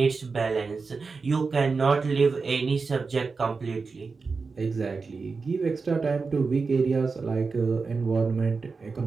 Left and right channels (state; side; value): quieter; left; 4.5 dB